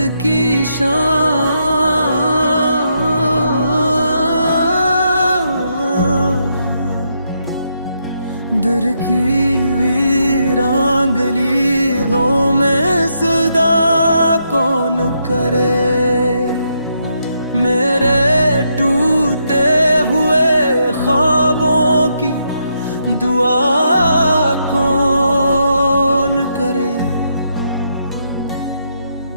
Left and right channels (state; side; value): inverted; both; correlation -0.79